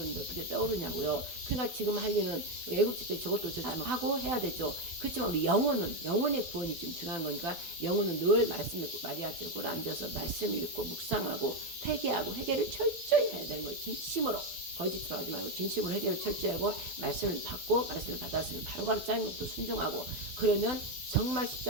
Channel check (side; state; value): left; late; 12 ms